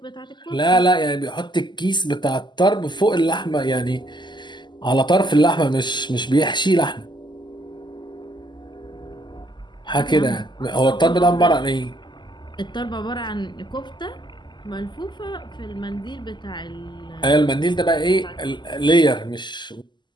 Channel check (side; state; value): right; late; 0.21 ms